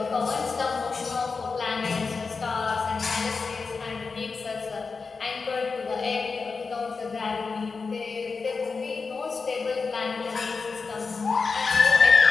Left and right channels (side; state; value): right; quieter; 4.6 dB